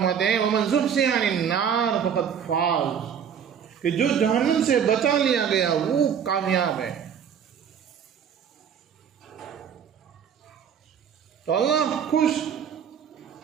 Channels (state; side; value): quieter; left; 7.9 dB